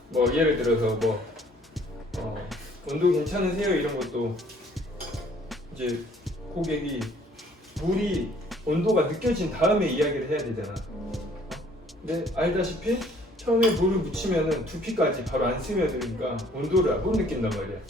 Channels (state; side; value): normal; both; correlation 0.59